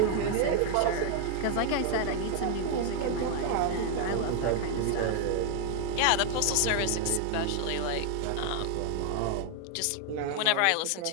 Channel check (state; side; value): different; both; correlation 0.00